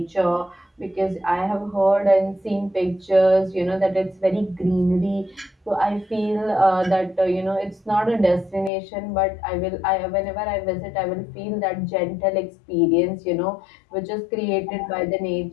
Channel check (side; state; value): right; drops out; at 8.7 s